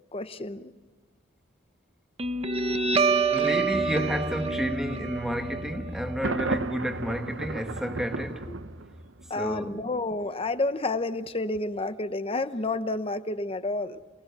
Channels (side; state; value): both; normal; correlation 0.47